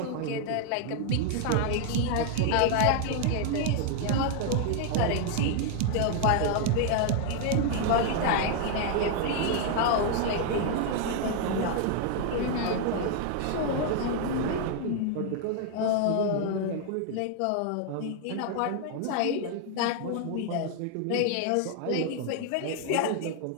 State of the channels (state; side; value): different; both; correlation 0.00